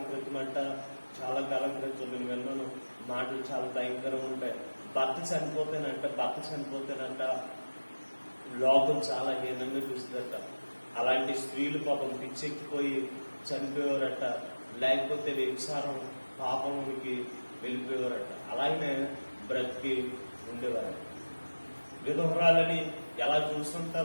క్రితం నేను విన్నాను మాటలు చాలా భయంకరంగా ఉంటాయి. భర్త చనిపోతేనంట లోకం చాలా హీనంగా చూస్తుందట. అలాంటి స్త్రీలు పాపం పిచ్చెక్కిపోయి చనిపోయేవారట, లేకపోతే వ్యభిచారం పాపమునికి వెళ్ళిపోయేవారట. అలాగనే బ్రతికి ఉండేవారట. విధవరాలని ఎలా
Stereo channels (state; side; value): inverted; both; correlation -1.00